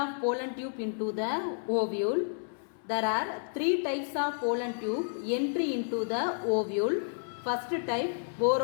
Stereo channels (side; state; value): right; silent; 57 dB below the other